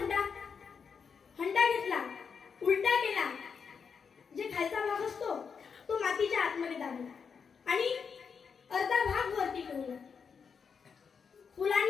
हंडा घेतला, उलटा केला, जे खालचा भाग असतो तो मातीच्या आतमध्ये दाबला आणि अर्धा भाग वरती ठेवला.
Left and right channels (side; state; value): right; quieter; 6.2 dB